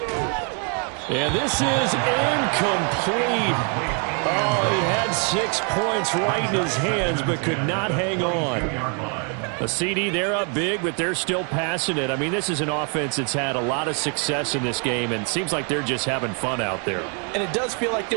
And this is incomplete. Oh, he had 6 points right in his hands, but could not hang on. A CD, they're up big, but they're still passing it. I mean, this is an offense that's had a lot of success in this game, and it seems like they're just having fun out there. And it does feel like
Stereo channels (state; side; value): quieter; left; 37.7 dB